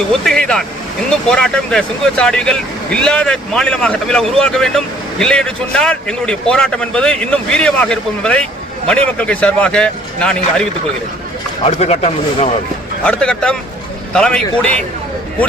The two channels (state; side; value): normal; both; correlation 0.58